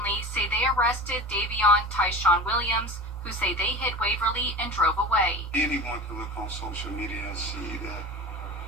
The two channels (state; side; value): normal; both; correlation 0.32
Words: say they arrested Davion Tyshawn Williams, who say they hit Waverly and drove away. Anyone can look on social media and see that